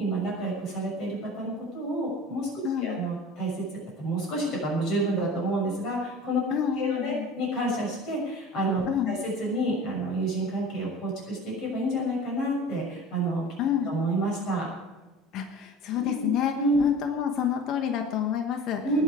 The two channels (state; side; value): normal; both; correlation 0.39